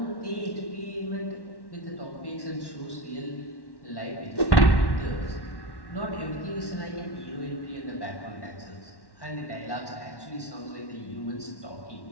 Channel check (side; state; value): right; late; 1.1 ms